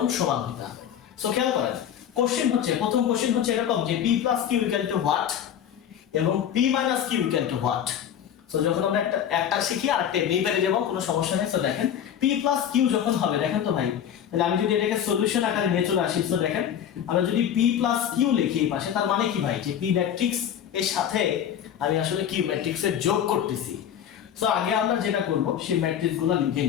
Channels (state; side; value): quieter; right; 9.4 dB